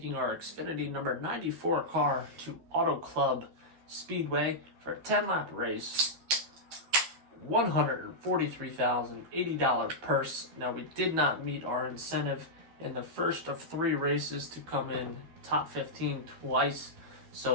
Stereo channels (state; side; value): late; left; 13 ms